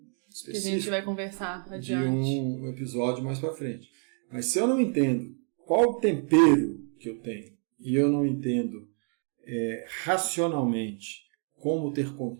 específico que a gente vai conversar adiante. De um episódio mais para frente. Mas se eu não entendo qual o tempero que eu tenho e eu não entendo racionalmente como ter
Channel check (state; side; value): quieter; left; 39.7 dB